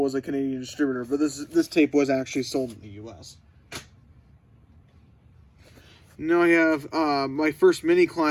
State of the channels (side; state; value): both; identical; correlation 1.00